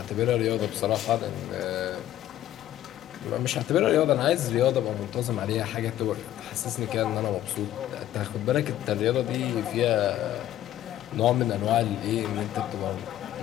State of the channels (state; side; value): quieter; right; 12.9 dB